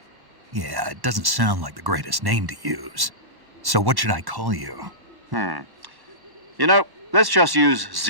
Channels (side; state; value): left; late; 1.1 ms